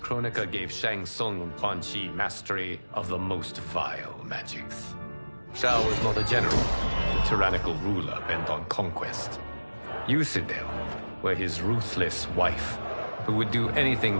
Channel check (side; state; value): both; inverted; correlation -1.00